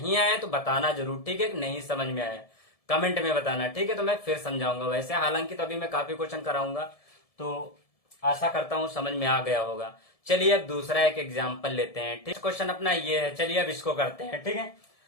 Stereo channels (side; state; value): right; late; 1.7 ms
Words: आए तो बताना जरूर, ठीक है, नहीं समझ में आया कमेंट में बताना, ठीक है, तो मैं फिर समझाऊंगा। वैसे हालांकि तो अभी मैं काफी क्वेश्चन कराऊंगा, तो आशा करता हूं समझ में आ गया होगा। चलिए अब दूसरा एक एग्जाम्पल लेते हैं, ठीक, क्वेश्चन अपना ये है, चलिए अब इसको करते हैं, ठीक है।